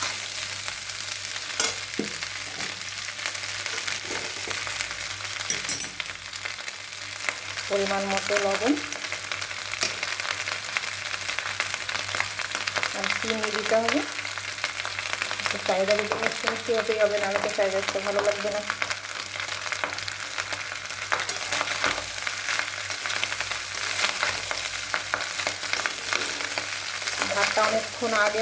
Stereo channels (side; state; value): both; identical; correlation 1.00